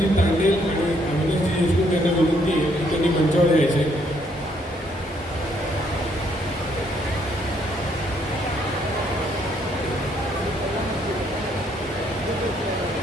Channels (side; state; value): both; normal; correlation 0.70